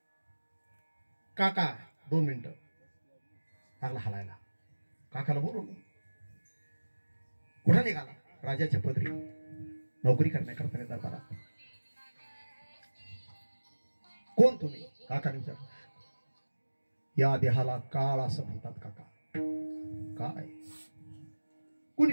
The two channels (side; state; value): both; inverted; correlation -1.00